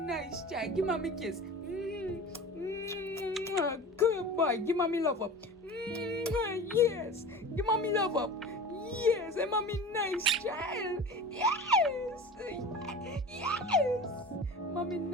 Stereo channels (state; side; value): normal; both; correlation 0.36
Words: child. Give mommy a kiss. Good boy. Give mommy love up. Yes. Give mommy love up. Yes. And mommy nice child. Yes. Yes. Mommy